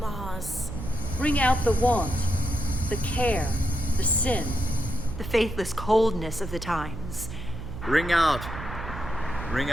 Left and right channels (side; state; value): right; noise; hum, 9 dB below the sound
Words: laws. Ring out the want, the care, the sin. The faithless coldness of the times. Ring out